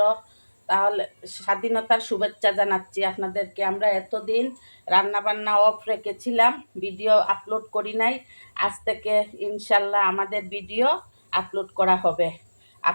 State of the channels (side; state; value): both; inverted; correlation -1.00